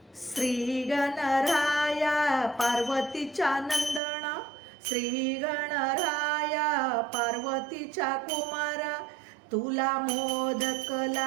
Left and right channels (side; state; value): left; drops out; at 4.0 s